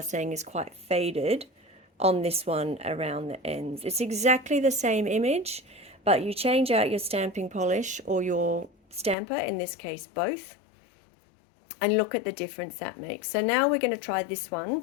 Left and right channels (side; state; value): right; drops out; at 9.2 s